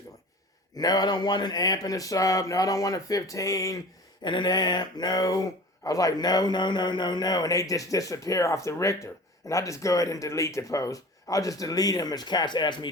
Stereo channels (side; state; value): both; normal; correlation 0.39